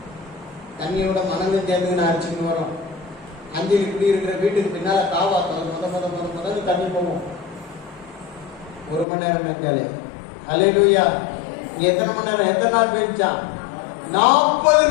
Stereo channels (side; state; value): right; drops out; at 9.1 s